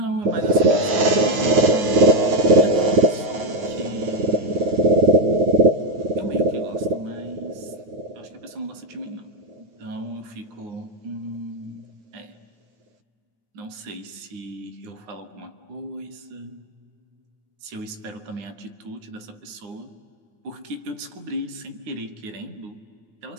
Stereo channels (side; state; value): left; late; 9.3 ms